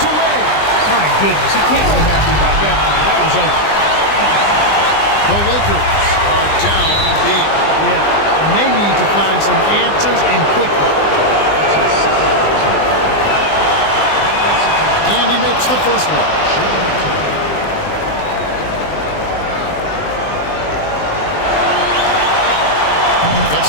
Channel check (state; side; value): late; right; 20 ms